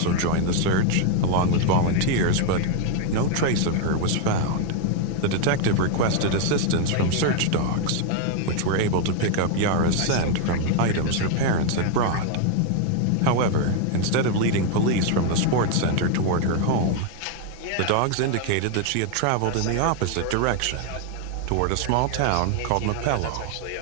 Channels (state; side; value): different; both; correlation 0.01